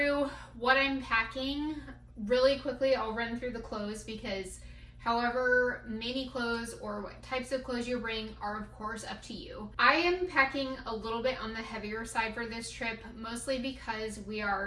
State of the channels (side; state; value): both; identical; correlation 1.00